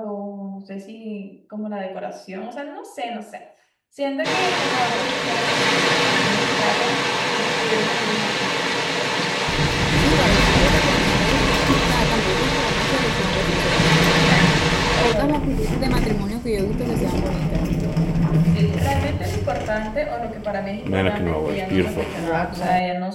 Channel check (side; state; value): both; identical; correlation 1.00